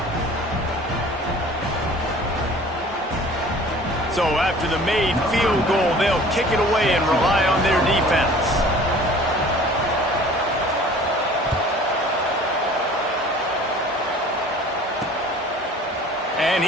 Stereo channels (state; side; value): normal; both; correlation 0.47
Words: So after the made field goal, they'll kick it away and rely on their defense. And